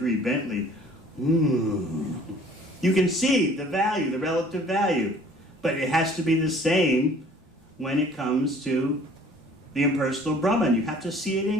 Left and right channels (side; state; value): both; normal; correlation 0.53